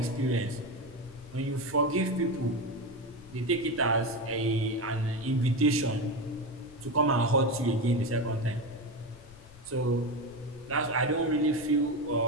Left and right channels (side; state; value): left; noise; rumble, 22 dB below the sound